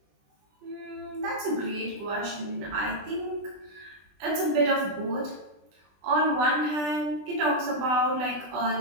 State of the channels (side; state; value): left; late; 20 ms